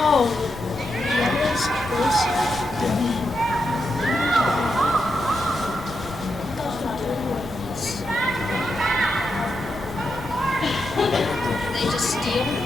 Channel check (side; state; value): right; noise; rumble, 17 dB below the sound